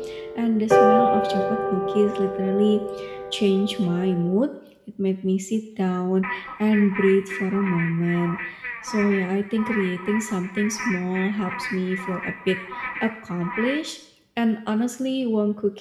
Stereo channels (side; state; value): both; identical; correlation 1.00